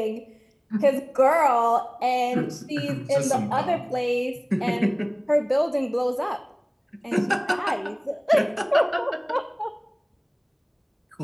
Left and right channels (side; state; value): both; identical; correlation 1.00